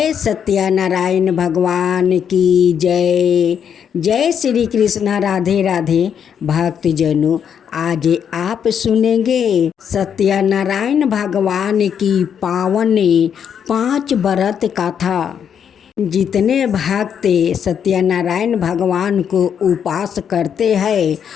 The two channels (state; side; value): quieter; right; 8.1 dB